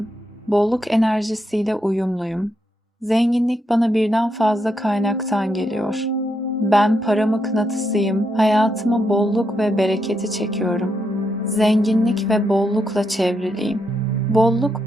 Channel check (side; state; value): both; normal; correlation 0.81